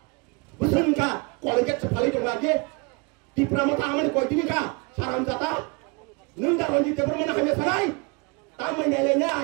বুঝেন কা কলেজে ফালি দং আগে টিপ্রামতা আমানে কয়দিনি কা সারাম জাতা নন্দা রঞ্জিত দেবর মানে হামে সানাই তামাই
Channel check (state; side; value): quieter; left; 30.2 dB